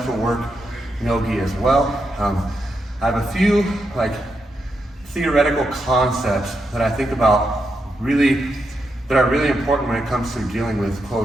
will work no gi as well. I have a few theoretical concepts that I think about that are really important when it comes to dealing with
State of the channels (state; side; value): normal; both; correlation 0.84